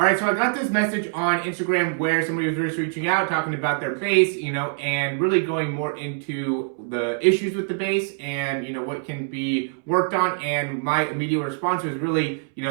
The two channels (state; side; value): silent; left; 63 dB below the other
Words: so I got this message on Instagram where somebody was just reaching out, talking about their base, and really going more into the issues with the base and, what can be worked on. And my immediate response was really,